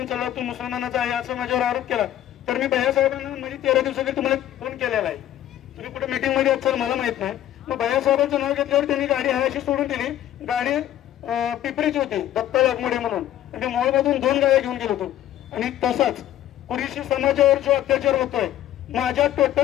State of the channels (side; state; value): right; quieter; 12.4 dB